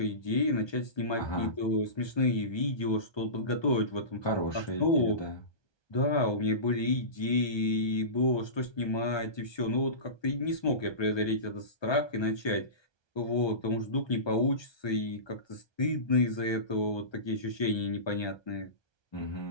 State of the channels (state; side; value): late; right; 1.2 ms